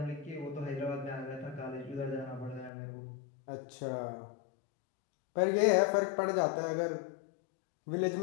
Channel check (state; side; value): drops out; right; at 2.7 s